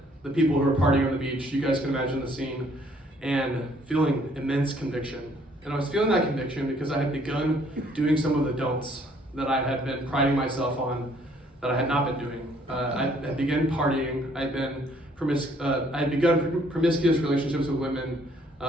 people who were partying on the beach. You guys can imagine the scene. And feeling immense conviction. And I was feeling that conviction because I had begun doing some of the don'ts that I had been priding myself on that I had not been doing. I had begun partying. I had begun promiscuous relationships with women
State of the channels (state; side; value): normal; both; correlation 0.63